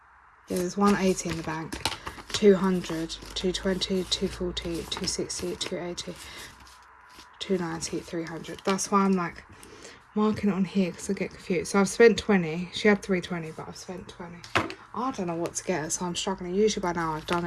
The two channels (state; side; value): identical; both; correlation 1.00